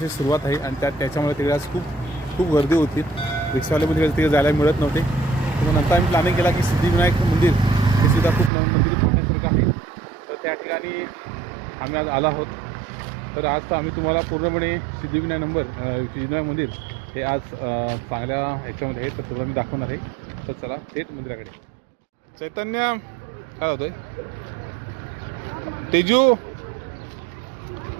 सुरुवात आहे आणि त्याच्यामुळे तिकडे आज खूप गर्दी होती. रिक्षावाल्यामध्ये तिकडे जायला मिळत नव्हते. तर नंतर आम्ही प्लॅनिंग केला की सिद्धिविनायक मंदिर हे सुद्धा खूप नवीन मंदिर पाहण्यासारखं आहे. तर त्या ठिकाणी आम्ही आज आलो आहोत. तर आज तर आम्ही तुम्हाला पूर्णपणे सिद्धिविनायक मंदिर हे आज चांगल्या ह्याच्यामध्ये आहे, तर तुला मी दाखवणार आहे. तर चला थेट मंदिराकडे. चैतन्य काय होतंय?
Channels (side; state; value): left; drops out; at 8.5 s